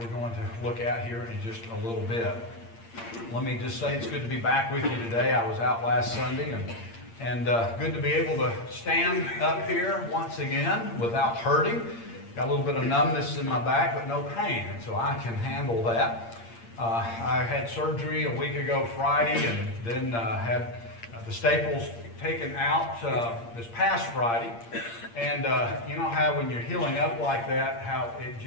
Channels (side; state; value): right; late; 8.7 ms